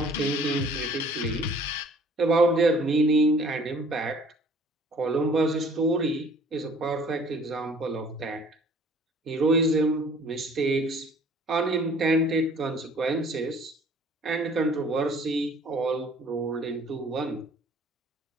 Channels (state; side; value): normal; both; correlation 0.53